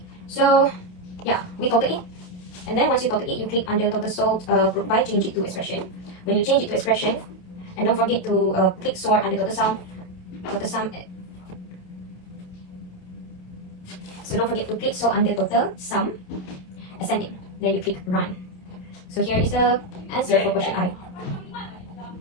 So yeah, we total it. And then once you total it, you click under total sold group by, change it to expression. When you change it to expression, and don't forget to click sort under total sum. So don't forget to click sort under total sum, ascending. Then you click run. So here is the answer for question I.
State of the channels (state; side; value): late; right; 27 ms